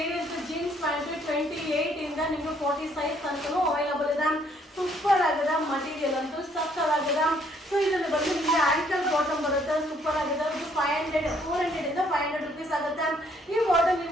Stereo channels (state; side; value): normal; both; correlation 0.66